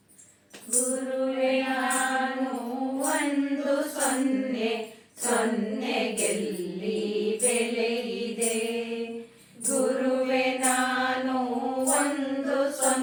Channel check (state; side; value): identical; both; correlation 1.00